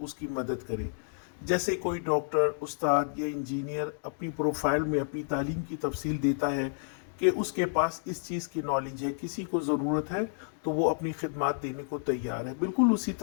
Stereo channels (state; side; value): silent; right; digital silence